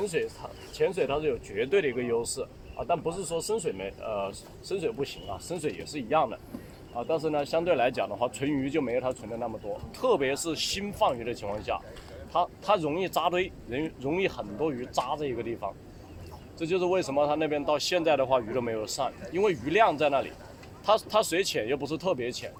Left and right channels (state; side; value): identical; both; correlation 1.00